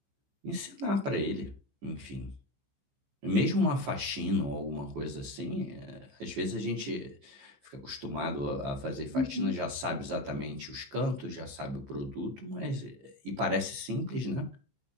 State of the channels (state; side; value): late; left; 15 ms